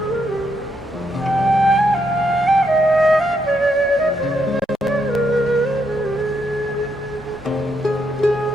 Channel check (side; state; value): both; normal; correlation 0.77